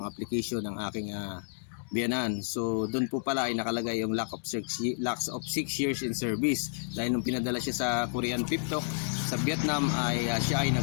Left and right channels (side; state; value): right; silent; digital silence